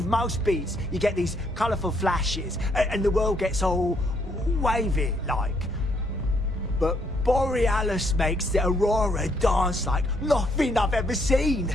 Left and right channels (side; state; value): both; normal; correlation 0.71